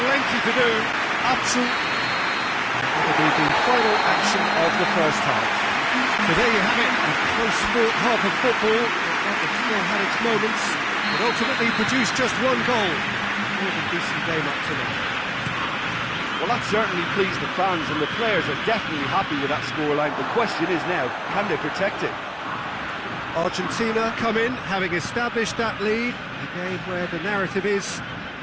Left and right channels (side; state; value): both; identical; correlation 1.00